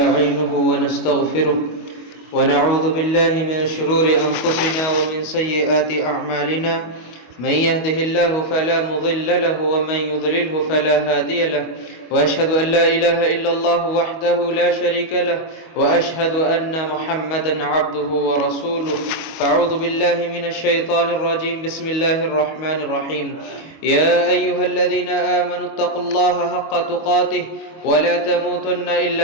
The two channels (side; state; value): right; late; 25 ms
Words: ونستغفره ونعوذ بالله من شرور أنفسنا ومن سيئات أعمالنا. من يهده الله فلا مضل له ومن يضلله فلا هادي له، وأشهد أن لا إله إلا الله وحده لا شريك له، وأشهد أن محمدا عبده ورسوله. فأعوذ بالله من الشيطان الرجيم. بسم الله الرحمن الرحيم. يا أيها الذين آمنوا اتقوا الله حق تقاته ولا تموتن